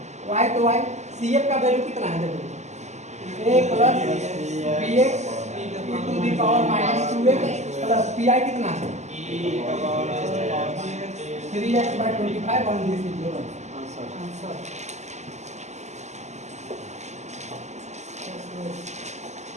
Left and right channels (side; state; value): left; late; 0.33 ms